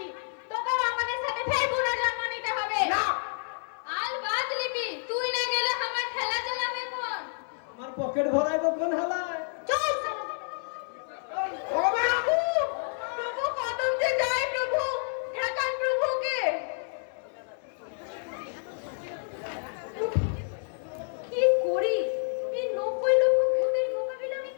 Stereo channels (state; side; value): silent; right; 59 dB below the other